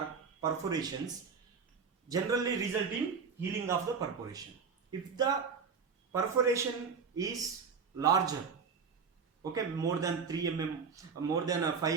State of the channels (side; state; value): left; quieter; 5.7 dB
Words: perforations generally result in healing of the perforation. If the perforation is larger, okay, more than 3 mm, more than 5